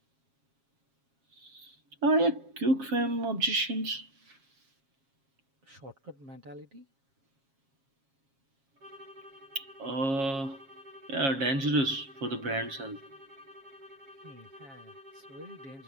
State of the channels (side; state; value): left; late; 7.4 ms